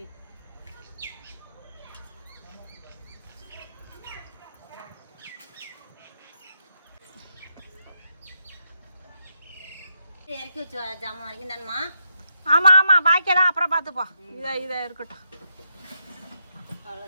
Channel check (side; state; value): both; inverted; correlation -0.80